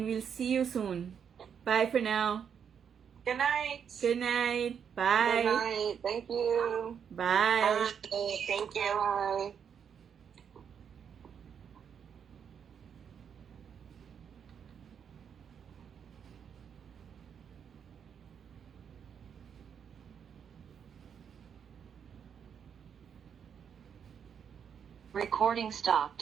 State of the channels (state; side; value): quieter; left; 7.6 dB